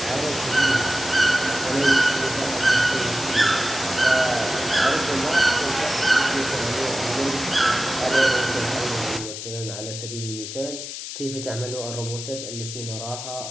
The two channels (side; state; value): left; noise; hiss, 8 dB below the sound